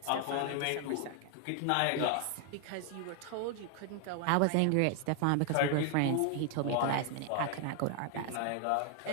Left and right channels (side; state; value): both; different; correlation 0.00